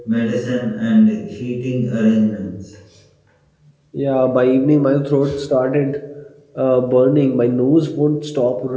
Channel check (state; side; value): identical; both; correlation 1.00